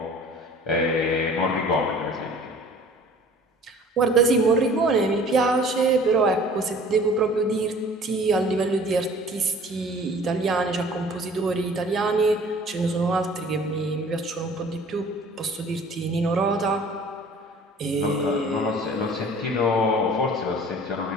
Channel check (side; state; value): both; normal; correlation 0.49